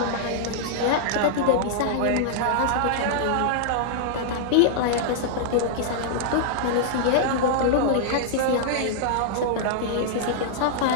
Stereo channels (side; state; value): both; different; correlation -0.01